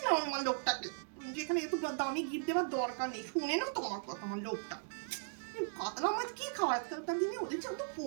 আমি আমার লোকটাকে যেখানে এত দামি গিফট দেওয়ার দরকার নেই, শুনে নাও তোমার কথা আমার লোকটা। কাতলা মাছ কি খাওয়ায় আজকালকার দিনে? ওদের যে অত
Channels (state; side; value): silent; left; digital silence